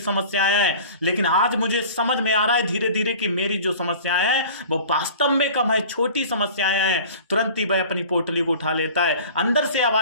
समस्याएं हैं, लेकिन आज मुझे समझ में आ रहा है धीरे धीरे कि मेरी जो समस्याएं हैं वो वास्तव में कम है, छोटी समस्याएं हैं। तुरंत ही वह अपनी पोटली को उठा लेता है। अंदर से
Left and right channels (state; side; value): inverted; both; correlation -0.42